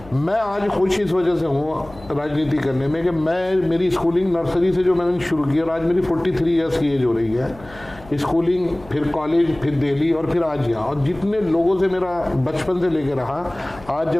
मैं आज खुश इस वजह से हूँ राजनीति करने में कि मेरी स्कूलिंग नर्सरी से जो मैंने शुरू की और आज मेरी 43 ईयर्स की एज हो रही है। स्कूलिंग, फिर कॉलेज, फिर दिल्ली और फिर आज यहाँ, और जितने लोगों से मेरा बचपन से लेकर रहा, आज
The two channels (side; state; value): left; noise; hum, 21 dB below the sound